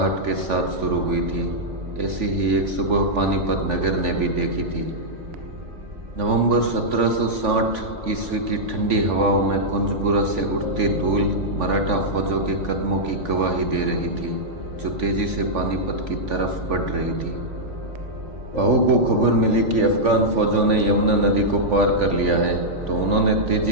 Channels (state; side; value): late; left; 3.5 ms